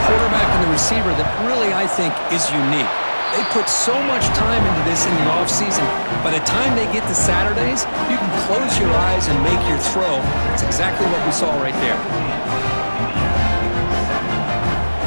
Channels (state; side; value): inverted; both; correlation -1.00